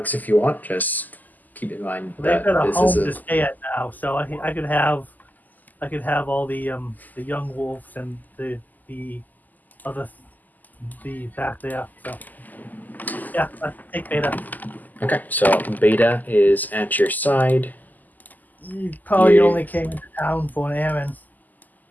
if you want. Just keep in mind They've that got a this home is to stay at now, so I could have all the young wolves and the back there. So yeah, take Beta. Okay, so Beta is at your side. You probably Yeah. only came into town for an errand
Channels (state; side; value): late; right; 0.083 ms